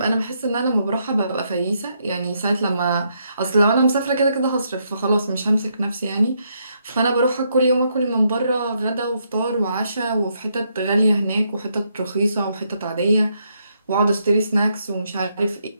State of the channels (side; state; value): both; inverted; correlation -0.76